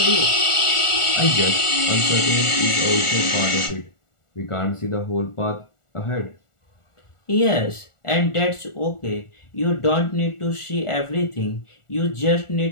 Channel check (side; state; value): right; late; 1.4 ms